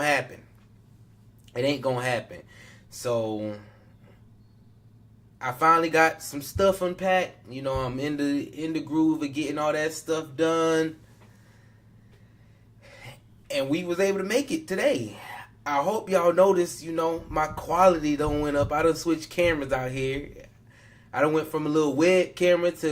happen. It ain't gonna happen. So I finally got some stuff unpacked. I'm in the groove of getting all that stuff done. And we was able to make it today. I hope y'all noticed, my quality done went up. I done switched cameras out here. I done went from a little web camera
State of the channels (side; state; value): both; identical; correlation 1.00